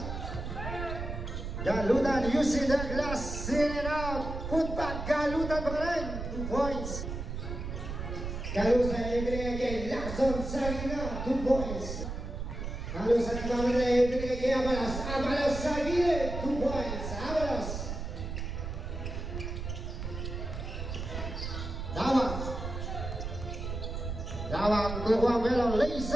Galutan using the glass, in and out. Put back, Galutan pa rin, 2 points. Galutan ibigay kay Lacson sa gitna, 2 points. Galutan ibigay kay Avalos. Avalos sa gilid, 2 points. Avalos. Dawang kukuha Melo,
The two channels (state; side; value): noise; right; rumble, 6 dB below the sound